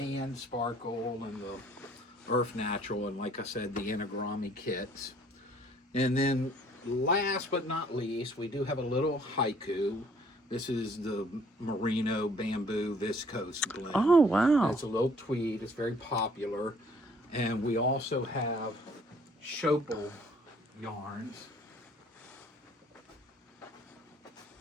Sparkle and the Earth Natural, and like I said, the anagrami kits. And then last but not least, we do have a little haiku. This is the merino bamboo viscose blend. Oh wow! It's a little tweed. It's very popular. And we also have Schopel yarns.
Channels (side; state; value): both; normal; correlation 0.59